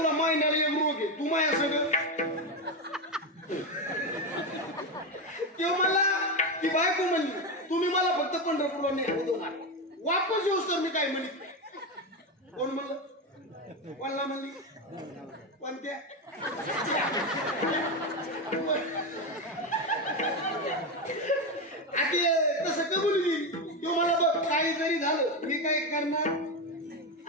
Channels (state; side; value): normal; both; correlation 0.12